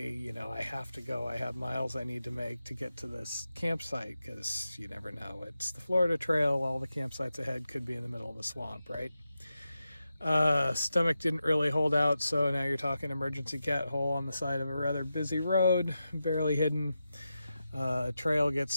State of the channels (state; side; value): inverted; both; correlation -0.90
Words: you know, I have to go. I have miles I need to make to get to this campsite because you never know. It's the Florida Trail. All the campsites ahead could be in the middle of a swamp, right? Stomach didn't really hold out, so now you're talking emergency cat hole on the side of a rather busy road, barely hidden. Trail gets